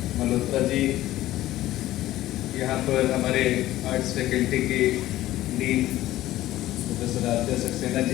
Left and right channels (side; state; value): right; quieter; 15.2 dB